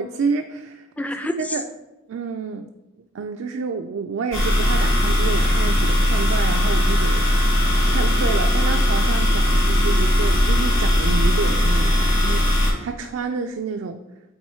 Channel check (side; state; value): both; normal; correlation 0.75